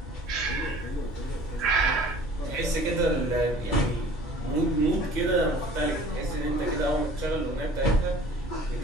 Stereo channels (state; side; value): normal; both; correlation 0.48